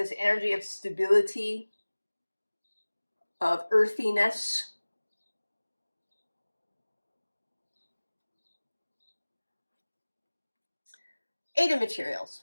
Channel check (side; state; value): both; inverted; correlation -1.00